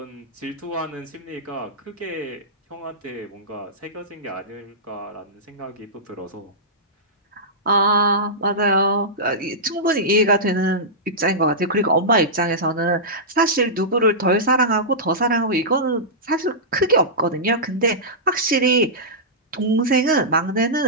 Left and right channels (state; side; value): normal; both; correlation -0.15